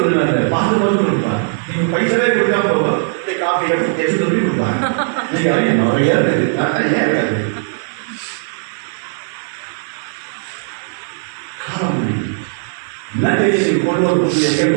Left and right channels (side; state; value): left; silent; digital silence